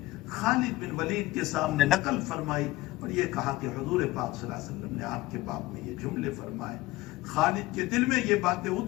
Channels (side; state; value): right; quieter; 18.7 dB